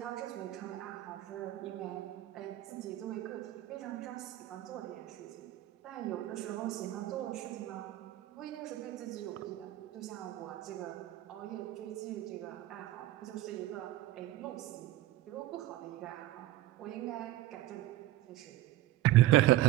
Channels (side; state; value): left; quieter; 15.5 dB